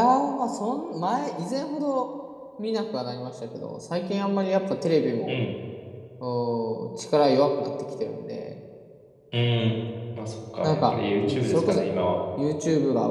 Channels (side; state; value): both; identical; correlation 1.00